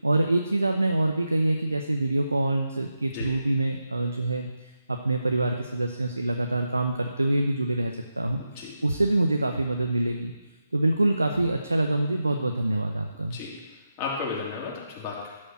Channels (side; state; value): both; inverted; correlation -0.88